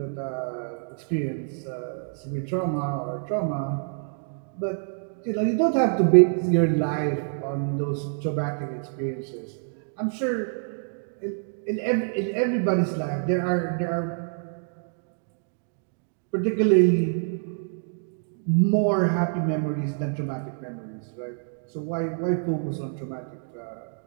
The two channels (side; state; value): left; silent; digital silence